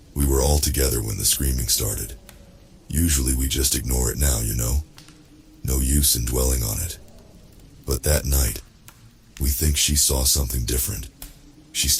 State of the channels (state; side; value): identical; both; correlation 1.00